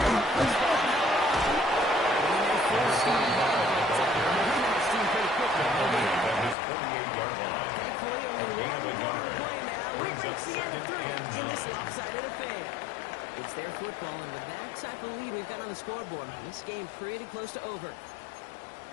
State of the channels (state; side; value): drops out; right; at 6.6 s